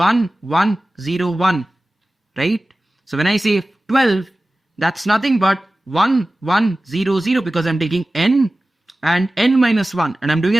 1 0 1, right? So when I say 12, that's nothing but 1 1 0 0, because I'm taking n and n minus 1, and I'm doing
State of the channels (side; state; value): both; normal; correlation 0.96